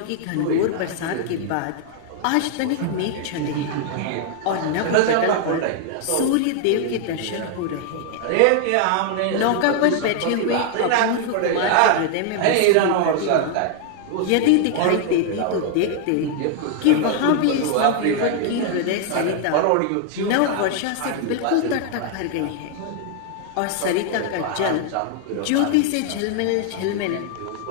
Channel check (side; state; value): both; different; correlation 0.00